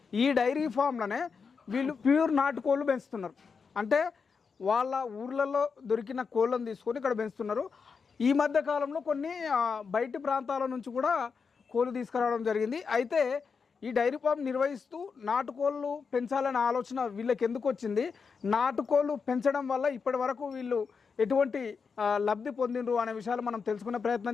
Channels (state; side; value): quieter; right; 5.5 dB